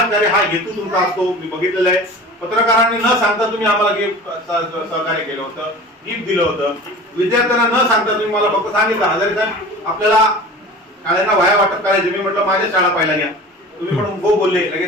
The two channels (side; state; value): both; normal; correlation 0.38